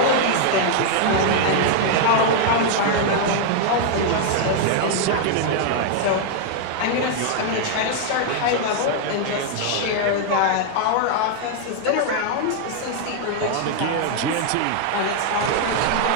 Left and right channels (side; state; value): both; different; correlation 0.00